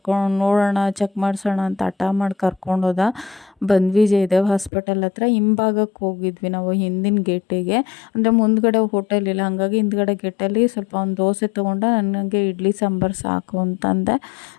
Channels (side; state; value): right; drops out; at 4.7 s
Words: ನೋಡೋಣ, ಚೆಕ್ ಮಾಡಿಸೋಣ ಅಂತ ಹಠ ಮಾಡಿ ಕರ್ಕೊಂಡೋದ. ಬಂದ್ವಿ ಜಯದೇವ ಹಾಸ್ಪಿಟಲ್ ಹತ್ರ. ಹಿಂಭಾಗಕ್ಕೆ ಹೋಗಿದ್ವಿ ನಾವು, ಹಿಂದಿನ ಗೇಟಿಗೆ. ಅಂದರೆ ಮುಂದ್ಗಡೆ ಹೋಟೆಲ್ ಇಲ್ಲ, ಹಾಗಾಗಿ ಹಿಂದ್ಗಡೆ ಗೇಟಲ್ಲಿ ಸ್ವಲ್ಪ ಒಂದು ದೋಸೆ ತೊಗೊಂಡೆ. ನನಗೆ ಇಡ್ಲಿ ಸಾಂಬಾರು ಸಾಕು ಅಂತಂದೆ.